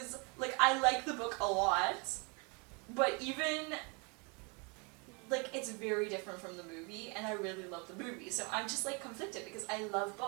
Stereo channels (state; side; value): quieter; left; 32.0 dB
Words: like, I like the book a lot, but even, like, it's very different from the movie, and I really love the movie. So I'm just, like, conflicted because I love